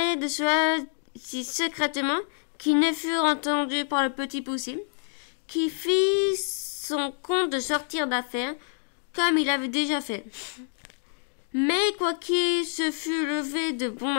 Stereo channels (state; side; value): silent; right; 60 dB below the other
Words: de cela si secrètement qu'ils ne furent entendus par le petit Poussé, qui fit son compte de sortir d'affaires, comme il avait déjà fait. Mais quoiqu'il se fût levé de bon